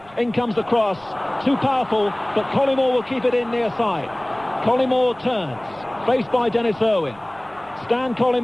In comes the cross. Too powerful, but Collymore will keep it in near side. Collymore turns, faced by Dennis Irwin. Stan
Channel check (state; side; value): noise; right; rumble, 25 dB below the sound